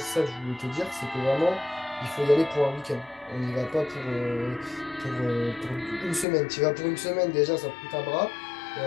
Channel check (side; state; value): right; drops out; at 6.2 s